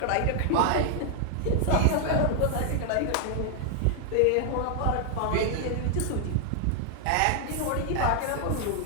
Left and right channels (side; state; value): both; different; correlation 0.00